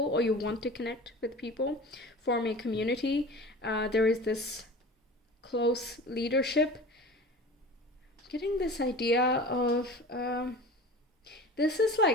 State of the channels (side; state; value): both; normal; correlation 0.37